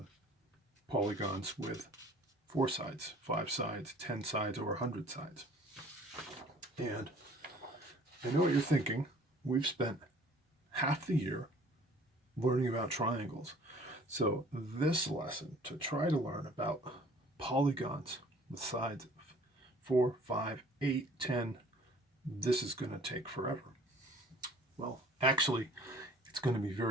polygons with 4 sides, 5 sides, 10 sides, or 100 sides. And I know what you're thinking. We've spent half the year learning about triangles. So this lesson, to try to learn about polygons with sides of 4, 5, 8, 10, this is going to take forever. Well, actually, it's going to be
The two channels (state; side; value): normal; both; correlation 0.52